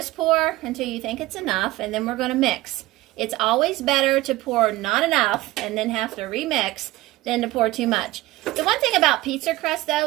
pour until you think it's enough, and then we're going to mix. It's always better to pour not enough and then have to remix than to pour too much. The one thing about pizza crust,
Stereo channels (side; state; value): left; quieter; 18.3 dB